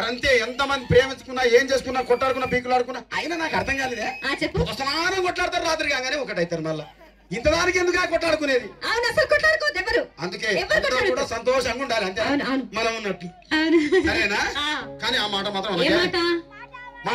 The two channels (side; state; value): both; identical; correlation 1.00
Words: ఎంతమంది ప్రేమించుకున్నా, ఏం చేసుకున్నా, కొట్టాడుకున్నా, పీకులాడుకున్నా అయినా నాకు అర్థం కాలేదే. స్నానం కొట్లాడతారు, రాత్రి కాగానే ఒకటైతారు. మళ్ళా ఇంతదానికి ఎందుకు కొట్టాడుకునేది? అందుకే కూడా సంతోషంగా ఉండాలి, అంతే మనం ఉన్నట్టు. సరేనా? కానీ ఆ మాట మాత్రం